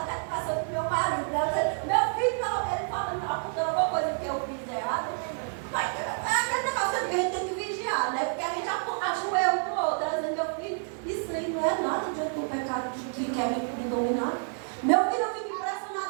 até passando com meu marido, meu filho, ele falando, apontando alguma coisa que eu fiz errado. Mas é aquele negócio que a gente tem que vigiar, né? Porque a gente ajoelha um para o outro, dizendo, meu filho, isso aí não é nada de aquele pecado que quer me dominar. Meu filho, eu fico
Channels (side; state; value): left; silent; 59 dB below the other